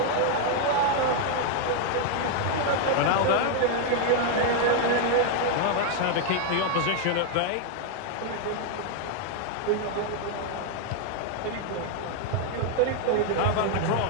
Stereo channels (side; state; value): both; different; correlation 0.00